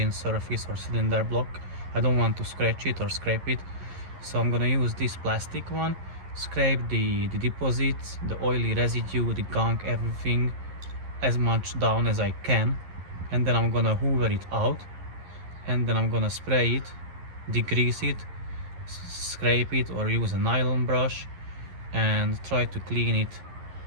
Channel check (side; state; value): left; late; 11 ms